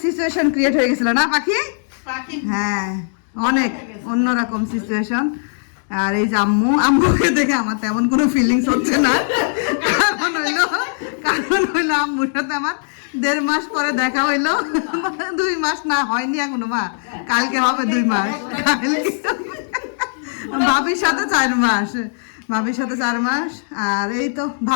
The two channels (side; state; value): right; silent; digital silence